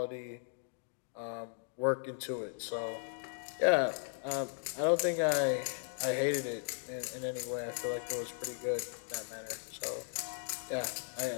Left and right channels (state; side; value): silent; right; digital silence